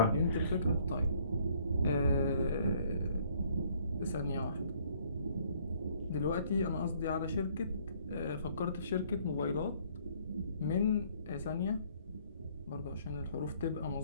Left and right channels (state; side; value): inverted; both; correlation -0.62